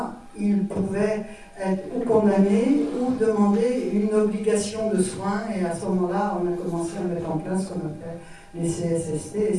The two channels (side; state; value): both; identical; correlation 1.00